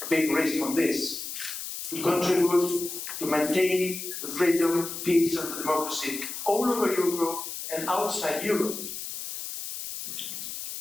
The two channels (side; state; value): left; noise; hiss, 7 dB below the sound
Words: big risk on this, to contribute to maintain the freedom, peace and the democracy all over Europe and outside Europe.